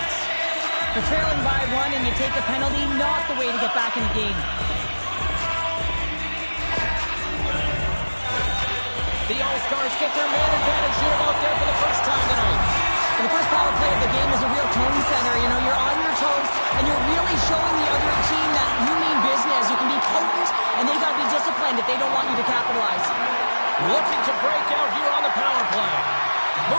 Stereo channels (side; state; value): both; inverted; correlation -1.00